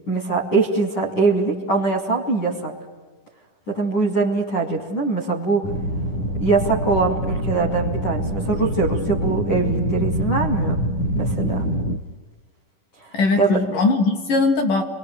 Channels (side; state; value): right; late; 10 ms